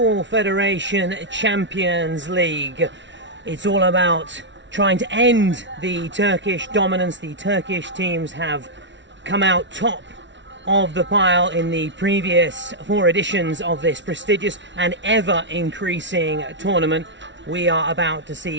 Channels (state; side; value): late; left; 0.53 ms